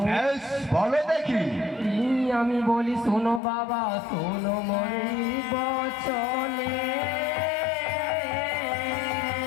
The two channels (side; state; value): right; drops out; at 3.4 s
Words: বেশ, বলো দেখি। আমি বলি শোনো বাবা, শোনো মরি বচনে।